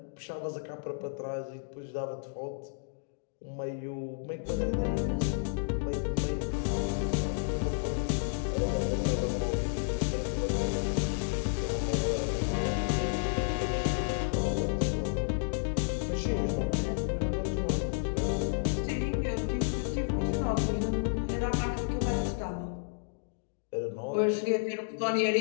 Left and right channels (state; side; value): silent; right; digital silence